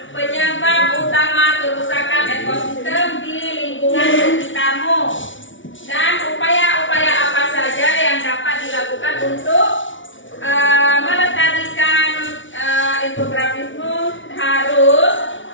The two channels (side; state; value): right; late; 0.56 ms